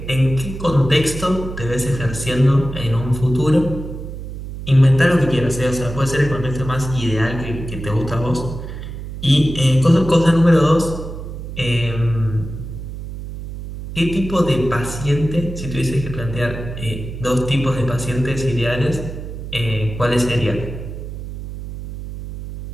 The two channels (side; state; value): right; noise; hum, 9 dB below the sound